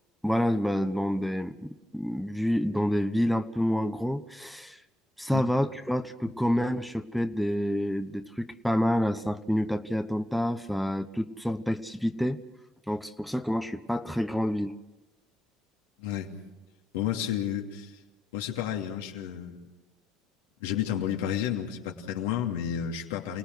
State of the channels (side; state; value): both; normal; correlation 0.83